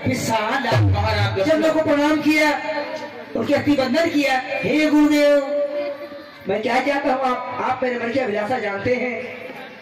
विशाला। महाराज चरणों को प्रणाम किया, उनके अतिबंधन किया। हे गुरुदेव, मैं क्या चाहता हूँ, आप मेरे मन की अभिलाषा जानते हैं।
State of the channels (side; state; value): both; identical; correlation 1.00